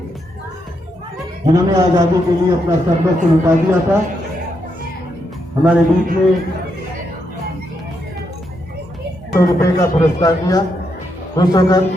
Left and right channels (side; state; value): both; normal; correlation 0.80